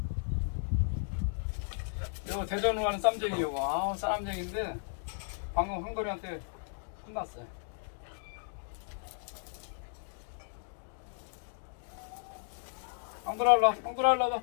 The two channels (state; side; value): silent; right; digital silence